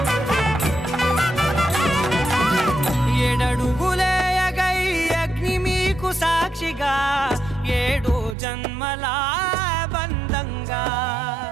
ఏడడుగులే ఎగై అగ్ని మీకు సాక్షిగా ఏడు జన్మల బంధంగా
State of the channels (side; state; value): left; drops out; at 8.3 s